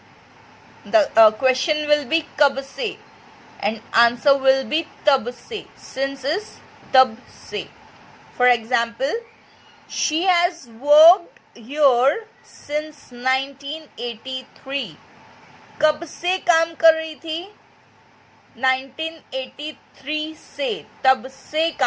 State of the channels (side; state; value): both; identical; correlation 1.00